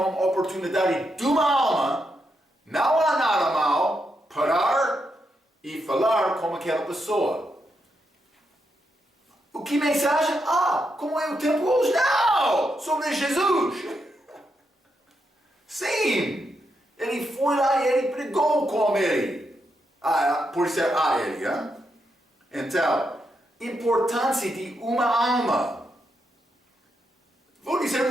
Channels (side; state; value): both; normal; correlation 0.82